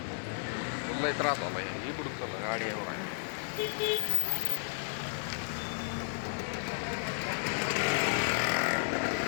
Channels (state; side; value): silent; right; digital silence